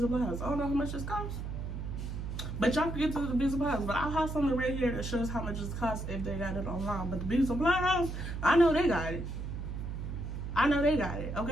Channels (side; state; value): right; noise; hum, 5 dB below the sound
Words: supply house. I don't know how much this costs, but y'all can get to the beauty supply house. But I'll have something right here that shows how much this costs if they got it online. But the beauty supply house, I know they got it.